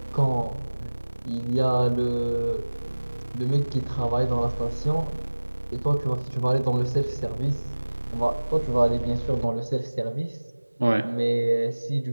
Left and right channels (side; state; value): both; inverted; correlation -1.00